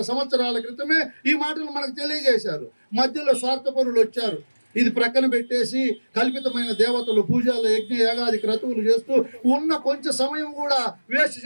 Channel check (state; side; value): inverted; both; correlation -1.00